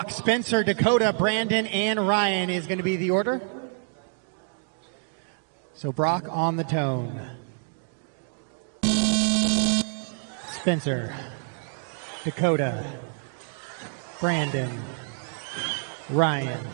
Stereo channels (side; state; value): left; silent; 60 dB below the other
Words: Spencer, Dakota, Brandon, and Ryan is going to be the order. So Brock on the tone. Spencer, Dakota, Brandon, Ryan.